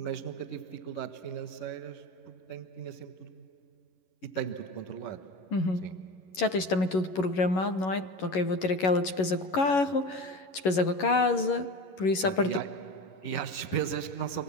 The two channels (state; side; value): late; right; 11 ms